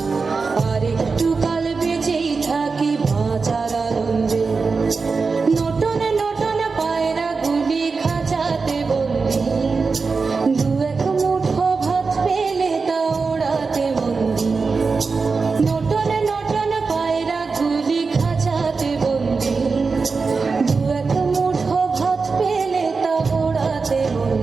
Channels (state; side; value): quieter; left; 4.6 dB